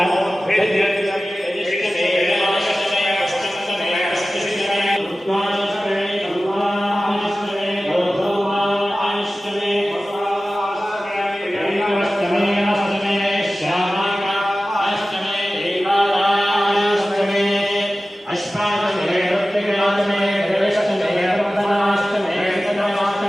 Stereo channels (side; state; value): both; normal; correlation 0.96